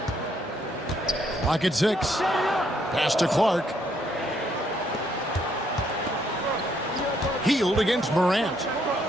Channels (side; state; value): both; normal; correlation 0.71